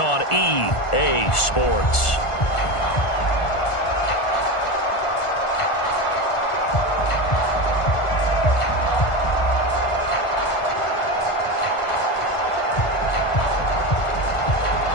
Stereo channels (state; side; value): late; right; 1.5 ms